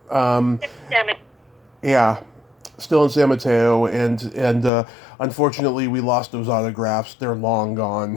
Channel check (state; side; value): drops out; right; at 4.7 s